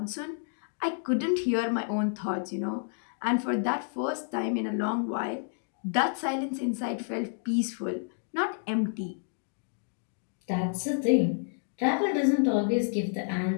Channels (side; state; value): right; silent; digital silence